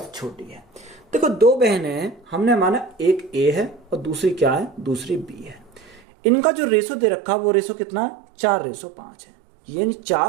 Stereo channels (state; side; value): drops out; left; at 6.0 s